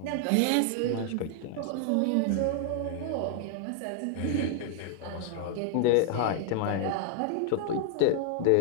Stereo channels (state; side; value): different; both; correlation 0.00